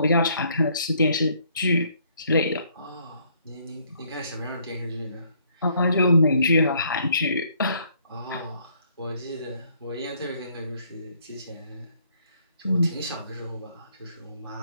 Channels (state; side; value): inverted; both; correlation -0.66